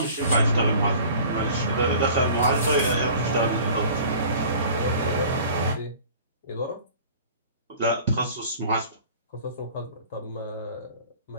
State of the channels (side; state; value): both; inverted; correlation -0.46